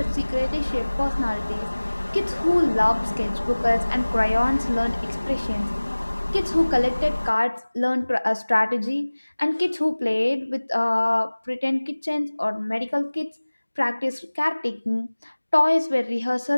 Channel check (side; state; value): both; inverted; correlation -1.00